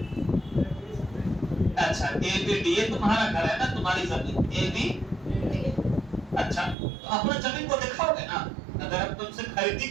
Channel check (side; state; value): left; drops out; at 6.8 s